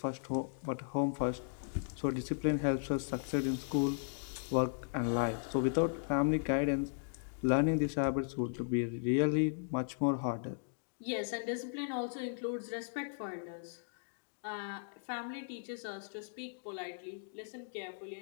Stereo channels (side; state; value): right; silent; digital silence